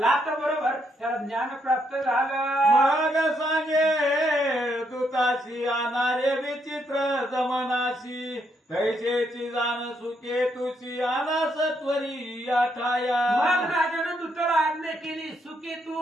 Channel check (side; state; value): both; normal; correlation 0.75